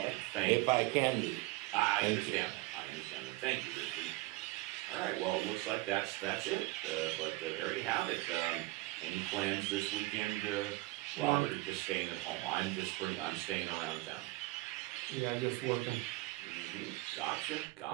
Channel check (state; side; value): quieter; left; 20.7 dB